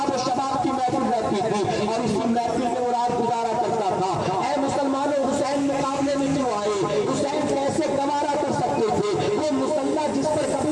शबाब की महफिल रहती थी और इसी महफिल में वो रात गुजारा करता था। ऐ मुसलमानों, हुसैन मुकाबले में क्यों आए? हुसैन कैसे गवारा कर सकते थे? वो मुसल्ला जिस पर कभी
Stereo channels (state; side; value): identical; both; correlation 1.00